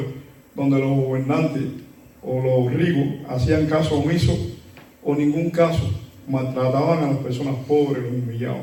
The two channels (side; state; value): both; identical; correlation 1.00